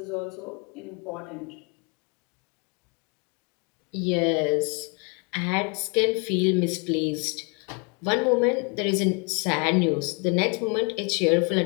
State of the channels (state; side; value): quieter; right; 33.9 dB